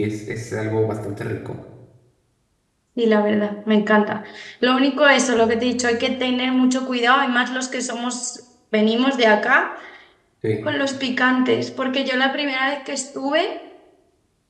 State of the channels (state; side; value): identical; both; correlation 1.00